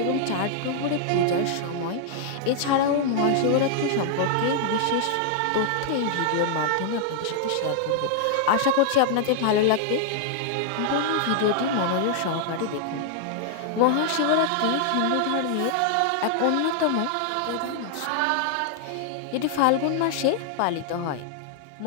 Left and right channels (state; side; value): different; both; correlation -0.01